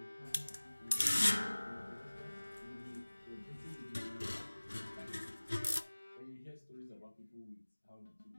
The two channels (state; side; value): inverted; both; correlation -1.00